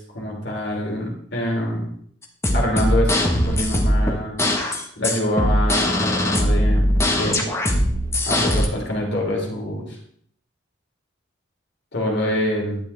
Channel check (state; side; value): normal; both; correlation 0.62